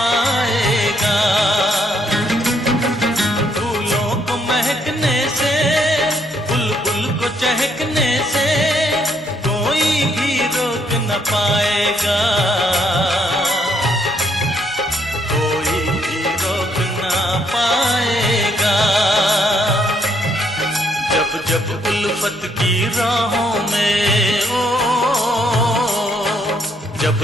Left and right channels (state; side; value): normal; both; correlation 0.71